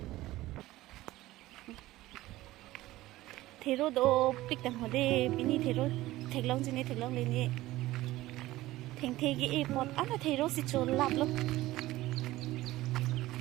thero do pik tang hode bini thero theklong jini theklong leni theng thegi e pot ana thero si chol lap lo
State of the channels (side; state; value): left; quieter; 16.9 dB